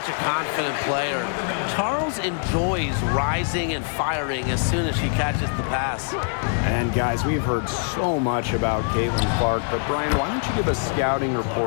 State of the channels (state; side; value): silent; right; 63 dB below the other